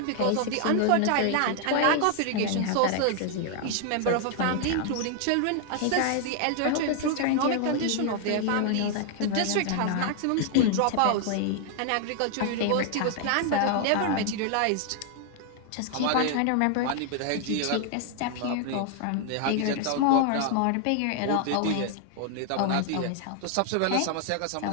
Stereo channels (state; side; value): different; both; correlation 0.00